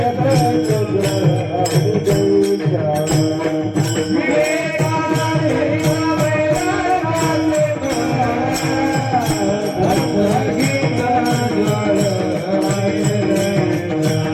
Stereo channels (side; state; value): both; identical; correlation 1.00